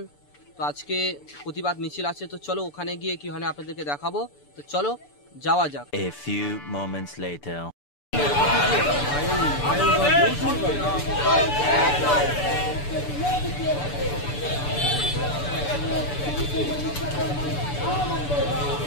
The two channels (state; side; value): late; right; 6.9 ms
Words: তো আজকে প্রতিবাদ মিছিল আছে। তো চলো ওখানে গিয়ে কি হয় আপনাদেরকে দেখাবো। তো চলো যাওয়া যাক। A few moments later.